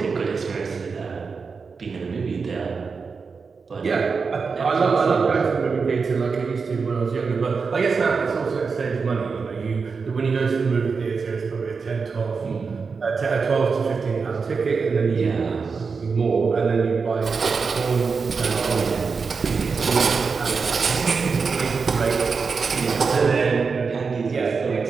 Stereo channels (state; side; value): quieter; left; 5.1 dB